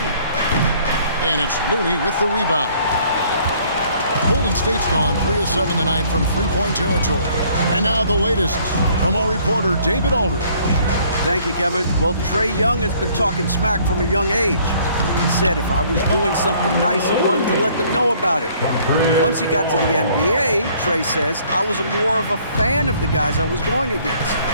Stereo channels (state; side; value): inverted; both; correlation -0.60